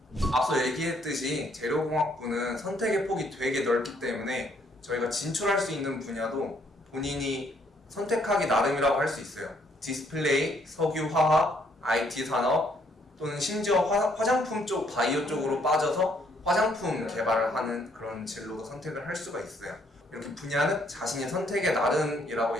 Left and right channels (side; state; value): both; normal; correlation 0.68